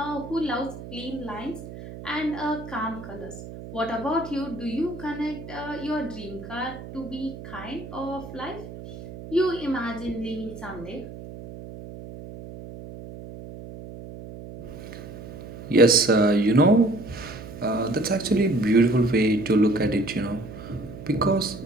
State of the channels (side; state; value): right; noise; hum, 13 dB below the sound